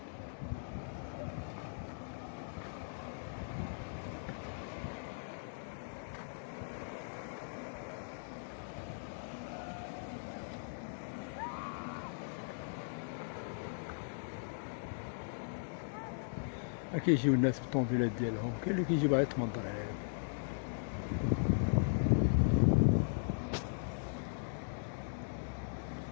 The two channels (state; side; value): silent; right; digital silence